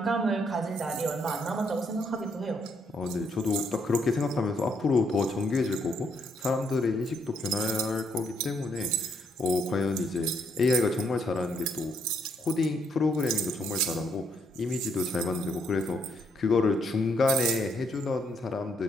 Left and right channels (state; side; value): normal; both; correlation 0.72